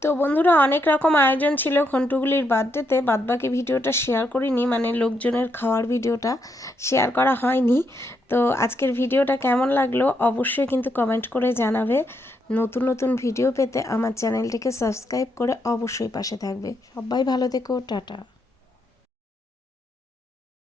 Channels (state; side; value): normal; both; correlation 0.78